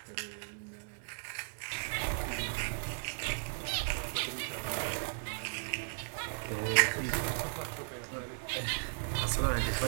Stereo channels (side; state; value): left; silent; digital silence